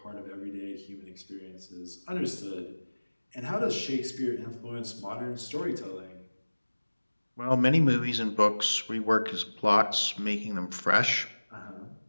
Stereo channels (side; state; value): both; inverted; correlation -1.00